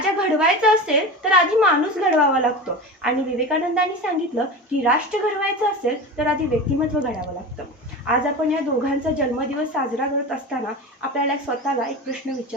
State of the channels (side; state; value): both; normal; correlation 0.28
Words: घडवायचा असेल तर आधी माणूस घडवावा लागतो आणि विवेकानंदांनी सांगितलं की राष्ट्र घडवायचं असेल तर आधी व्यक्तिमत्व घडावं लागतं। आज आपण या दोघांचा जन्मदिवस साजरा करत असताना आपल्याला स्वतःला एक प्रश्न